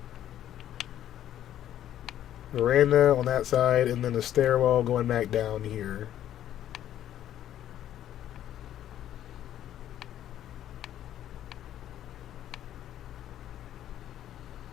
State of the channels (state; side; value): quieter; right; 11.5 dB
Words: Veranda on that side, and then the stairwell going back down here.